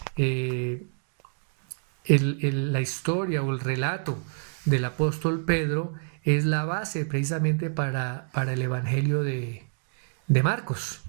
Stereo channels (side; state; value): left; silent; digital silence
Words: la historia o el relato del apóstol Pedro es la base precisamente para el evangelio de Marcos.